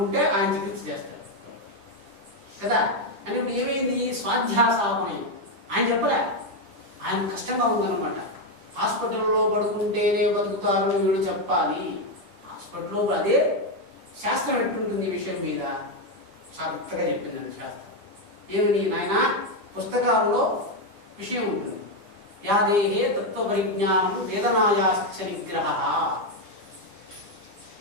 ఆయన చికిత్స చేస్తాడు కదా. అంటే ఇప్పుడు ఏమైంది? స్వాధ్యాసాపనయం. ఆయన చెప్పలే, ఆయన కష్టంగా ఉందన్నమాట. హాస్పిటల్లో పడుకుంటేనే బతుకుతారు వీడు చెప్పాలి. హాస్పిటల్లో అదే శాస్త్రం ఎట్టుంటుంది ఈ విషయం మీద చక్కగా చెప్పిందండి శాస్త్రం. ఏమని నాయన, పుస్తకాల్లో విషయం ఉంటుంది. యాదేహే తత్వపరిజ్ఞానం వేదనాయాశ్చ నిగ్రహ.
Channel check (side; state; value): left; late; 10 ms